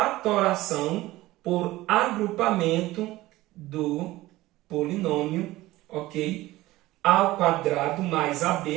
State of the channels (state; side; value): quieter; left; 17.7 dB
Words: por agrupamento do polinômio, ok? A ao quadrado mais